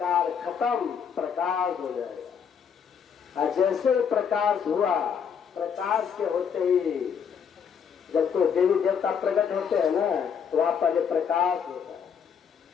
खत्म, प्रकाश हो जाएगा। और जैसे प्रकाश हुआ, प्रकाश के होते ही जब कोई देवी देवता प्रकट होते हैं ना, तो वहां पहले प्रकाश होता है।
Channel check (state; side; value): quieter; right; 7.1 dB